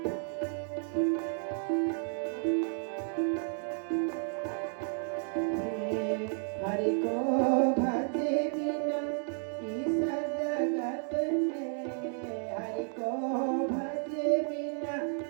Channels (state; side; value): silent; left; 56 dB below the other